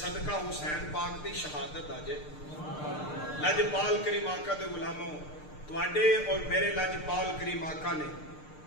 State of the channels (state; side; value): late; right; 6.6 ms